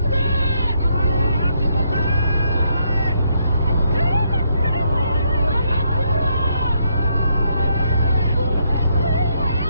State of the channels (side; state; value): both; inverted; correlation -0.74